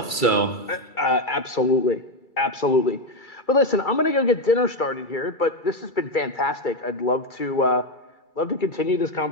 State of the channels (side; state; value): right; late; 2.3 ms